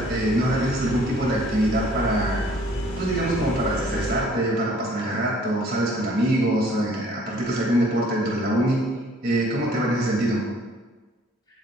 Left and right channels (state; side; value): normal; both; correlation 0.56